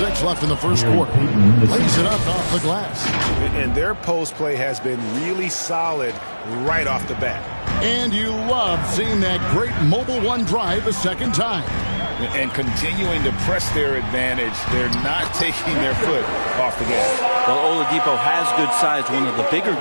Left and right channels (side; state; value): both; inverted; correlation -1.00